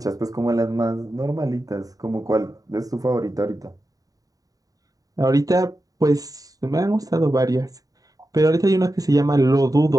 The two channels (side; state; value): left; late; 0.18 ms